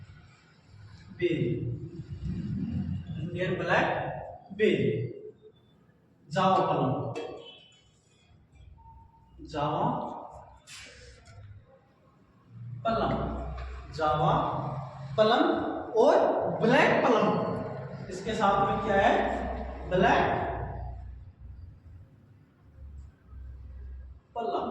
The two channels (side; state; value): both; identical; correlation 1.00